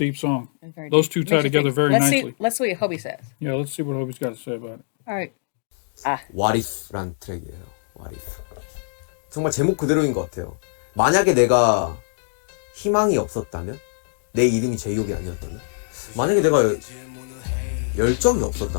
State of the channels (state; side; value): silent; right; digital silence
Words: song. It's very Those deep. two Makes tie you together think. very nicely. Let's see what Hobie says. Yeah, let's see what Hobie's got to say about it. All right. What if란 트랙이에요. What if. 정말 제목 그대로인 것 같아요. 만약에 내가 희망이 없었다면, 내 이름이 제이홉이 아니었다면, 만약에 내가 열정이